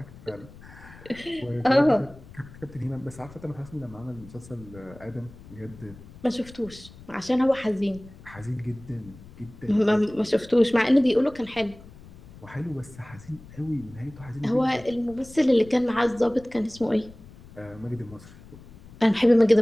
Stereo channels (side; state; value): left; noise; rumble, 20 dB below the sound